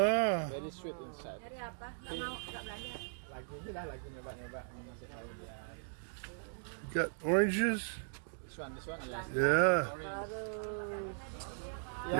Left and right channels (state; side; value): silent; left; digital silence